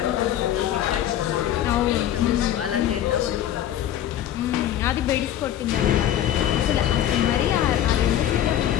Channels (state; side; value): quieter; right; 11.3 dB